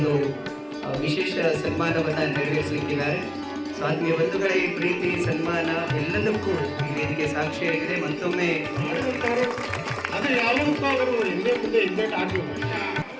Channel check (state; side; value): identical; both; correlation 1.00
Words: ವಿಶೇಷ ಸನ್ಮಾನವನ್ನು ನೆರವೇರಿಸಲಿಕ್ಕಿದ್ದಾರೆ. ಸೊ ಆತ್ಮೀಯ ಬಂಧುಗಳೇ, ಈ ಪ್ರೀತಿ ಸನ್ಮಾನ ಎಲ್ಲದಕ್ಕೂ ಈ ವೇದಿಕೆ ಸಾಕ್ಷಿಯಾಗಿದೆ. ಮತ್ತೊಮ್ಮೆ ಅದು ಯಾವುದಕ್ಕೂ ಅವರು ಹಿಂದೆ ಮುಂದೆ ಹಿಂದೆ ಆಗಬೇಕು.